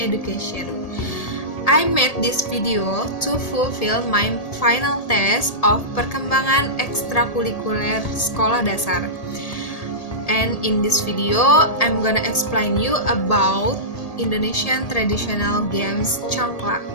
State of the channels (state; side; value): late; right; 1.8 ms